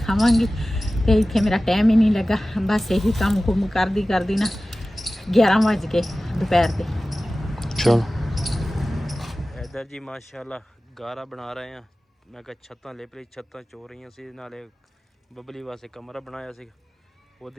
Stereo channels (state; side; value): normal; both; correlation 0.96